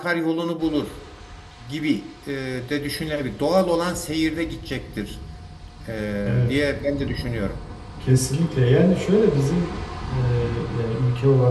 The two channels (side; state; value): both; identical; correlation 1.00